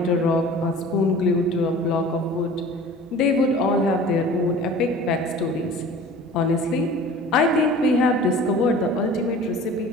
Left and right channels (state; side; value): normal; both; correlation 0.43